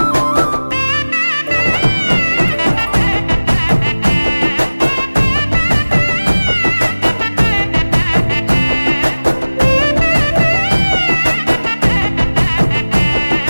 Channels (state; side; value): inverted; both; correlation -1.00